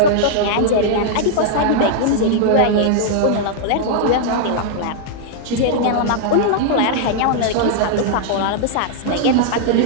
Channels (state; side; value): different; both; correlation -0.01